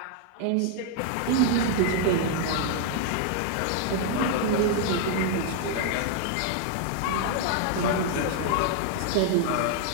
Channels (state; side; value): different; both; correlation 0.00